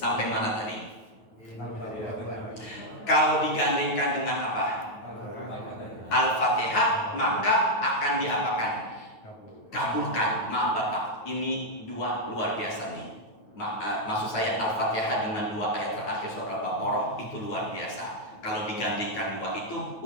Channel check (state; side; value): late; right; 9.2 ms